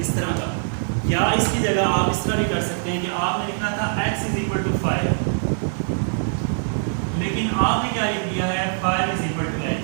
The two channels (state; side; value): silent; left; digital silence